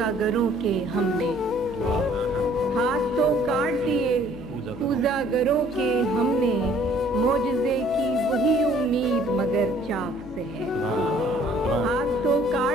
گروں کے ہم نے، واہ ہاتھ تو کاٹ دیے کوزہ گروں کے ہم نے، معجزے کی وہی امید مگر چاک سے ہے، ہاتھ تو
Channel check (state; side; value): normal; both; correlation 0.58